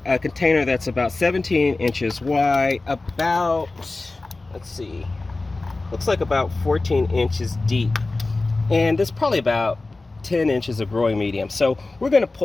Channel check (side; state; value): right; quieter; 3.3 dB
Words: a container that's about 17 inches wide, about, let's see, looks like about 14 inches deep. And there's probably about 10 inches of growing medium. So we're going to